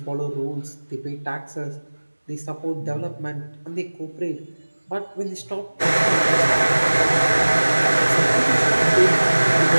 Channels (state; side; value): inverted; both; correlation -1.00